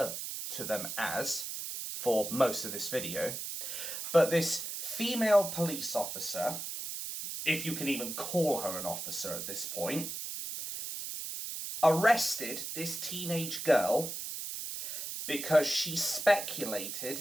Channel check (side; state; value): right; noise; hiss, 6 dB below the sound